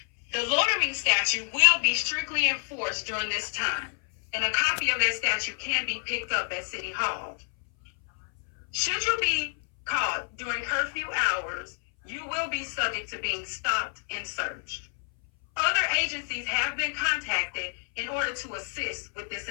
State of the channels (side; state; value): right; silent; 59 dB below the other